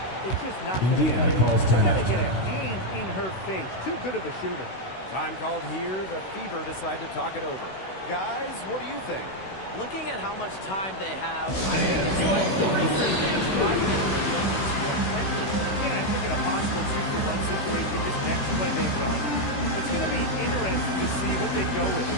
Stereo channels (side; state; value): right; late; 16 ms